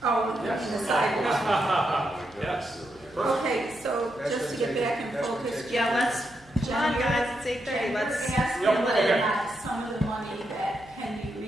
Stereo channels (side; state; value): right; noise; hum, 27 dB below the sound